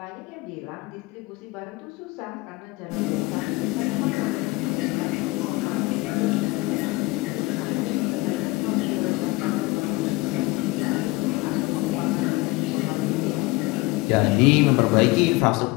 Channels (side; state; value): right; quieter; 22.5 dB